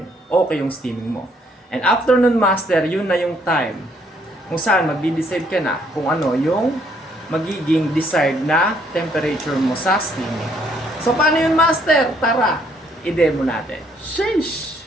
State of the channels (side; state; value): both; normal; correlation 0.67